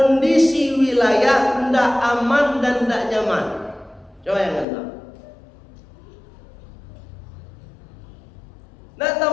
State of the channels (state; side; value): drops out; right; at 4.7 s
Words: wilayah tidak aman dan tidak nyaman. Coba yang tahu. Nah,